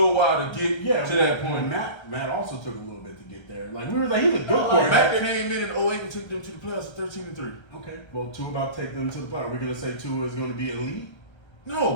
while to get to that point. Matt also took a little bit to get there. Like we were like, he's a good quarterback. Matt came in 08 and took them to the playoffs at 13-3. Okay. Well, Tua about to take them to the playoffs. We're gonna say Tua is gonna be elite.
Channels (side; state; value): right; late; 1.3 ms